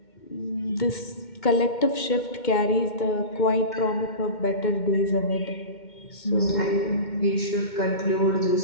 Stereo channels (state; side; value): late; right; 2.1 ms